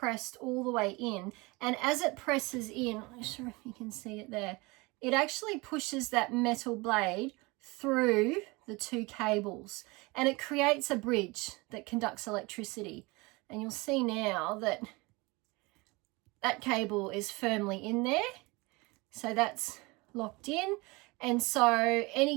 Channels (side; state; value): left; quieter; 24.9 dB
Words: all the way in, and as it presses in, I'm not sure if you can see it there, it actually pushes that metal blade through the two cables and it creates a bridge that conducts electricity. And you'll see now that that cable is firmly in there, so that's locked in, and so